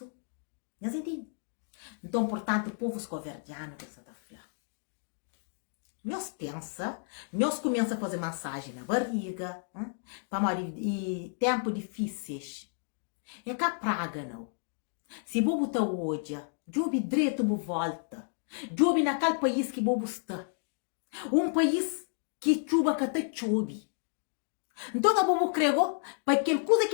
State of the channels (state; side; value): silent; right; digital silence